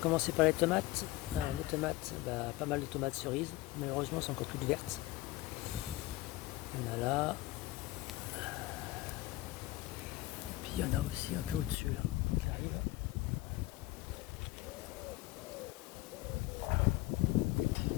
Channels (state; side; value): quieter; right; 18.4 dB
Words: commencer par les tomates. Les tomates, pas mal de tomates cerises, malheureusement elles sont encore toutes vertes. Il y en a là, et puis il y en a aussi un peu au-dessus là, qui arrive.